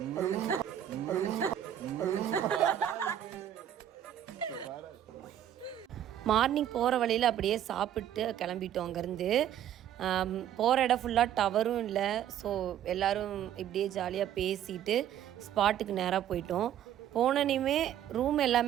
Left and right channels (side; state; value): left; quieter; 10.7 dB